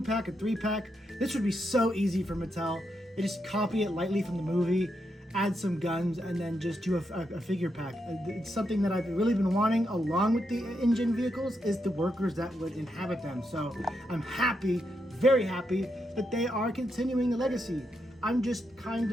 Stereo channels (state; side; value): normal; both; correlation 0.82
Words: a 3-pack. This would be so easy for Mattel. They just copy it lightly from the movie, add some guns, and then just do a figure pack. It's something that I've really been wanting, along with the InGen vehicles, is the workers that would inhabit them. So I'm happy, very happy, that they are continuing the legacy. I'm just kind